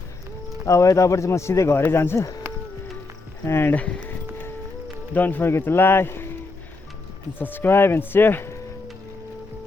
अब यताबाट चाहिँ म सिधै घरै जान्छु। And don't forget to like and subscribe and share.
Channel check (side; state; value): right; quieter; 3.4 dB